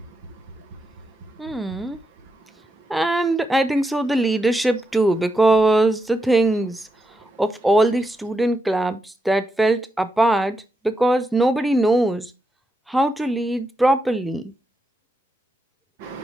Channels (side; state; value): both; normal; correlation 0.85